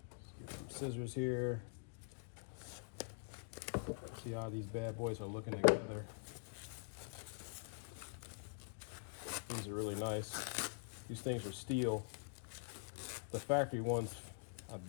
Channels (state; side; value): silent; right; digital silence